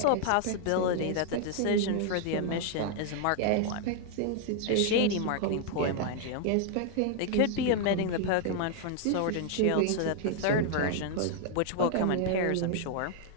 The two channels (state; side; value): different; both; correlation 0.00